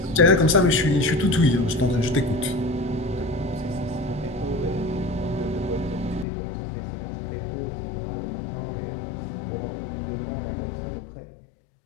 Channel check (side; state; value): right; drops out; at 6.2 s